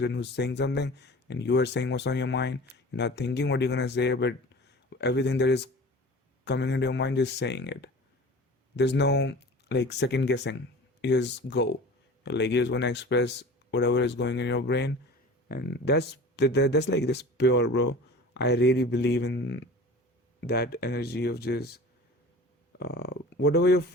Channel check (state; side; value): normal; both; correlation 0.39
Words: who's saying something and you are saying what's on your mind. You're not thinking what you're gonna say, but everything that is coming into your mind, just saying it. There's no like second guessing. You just go. Like you just wanna express whatever is going in your brain, and that's like this pure, bro. I really believe in that energy of just whatever your